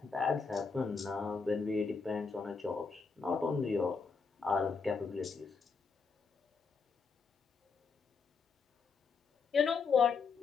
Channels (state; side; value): quieter; right; 5.0 dB